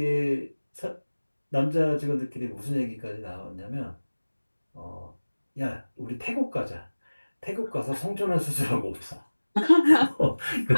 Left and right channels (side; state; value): both; inverted; correlation -1.00